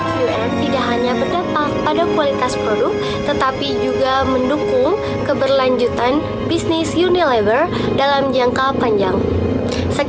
tidak hanya berdampak pada kualitas produk, tetapi juga mendukung keberlanjutan bisnis Unilever dalam jangka panjang.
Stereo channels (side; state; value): both; identical; correlation 1.00